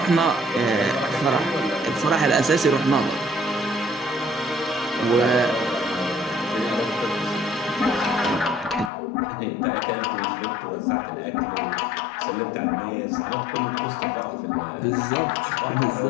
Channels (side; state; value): right; drops out; at 8.9 s